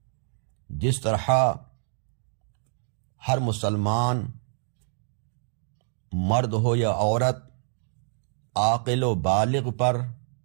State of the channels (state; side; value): silent; left; digital silence